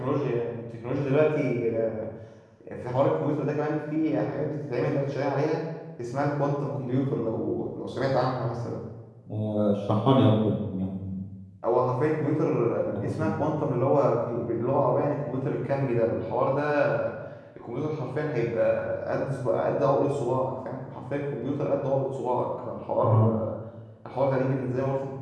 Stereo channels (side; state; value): both; identical; correlation 1.00